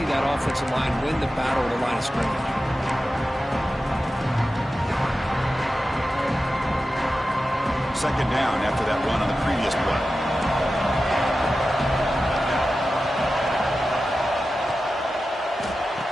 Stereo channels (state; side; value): normal; both; correlation 0.93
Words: that offensive line win the battle at the line of scrimmage. Second down after that run on the previous play.